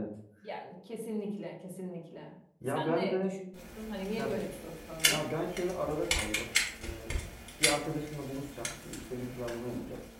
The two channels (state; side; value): identical; both; correlation 1.00